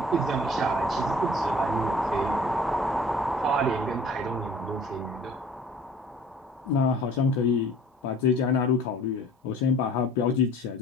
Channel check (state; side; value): normal; both; correlation 0.49